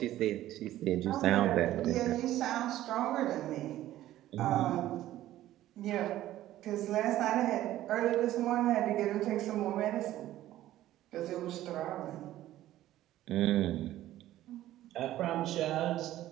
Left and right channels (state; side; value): quieter; left; 14.0 dB